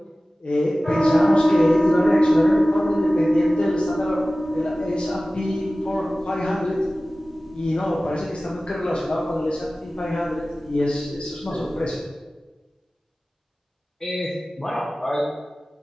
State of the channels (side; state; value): both; normal; correlation 0.97